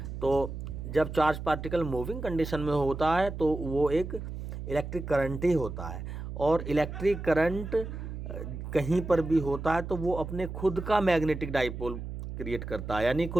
तो जब चार्ज पार्टिकल मूविंग कंडीशन में होता है तो वो एक इलेक्ट्रिक करंट ही होता है। और इलेक्ट्रिक करंट कहीं पर भी होता है तो वो अपने खुद का मैग्नेटिक डाइपोल क्रिएट करता है, यानी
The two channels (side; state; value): right; noise; hum, 8 dB below the sound